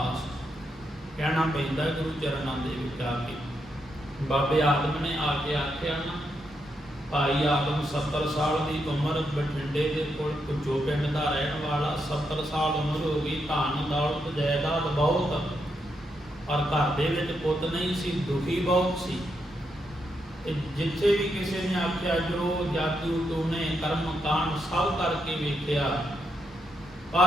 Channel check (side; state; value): both; normal; correlation 0.81